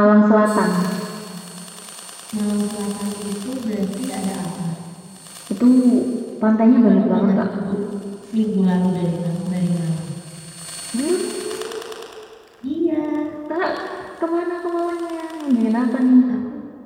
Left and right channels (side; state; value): both; identical; correlation 1.00